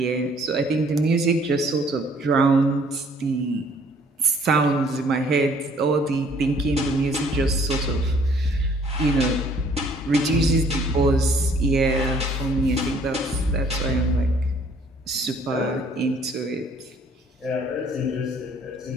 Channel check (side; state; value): both; normal; correlation 0.60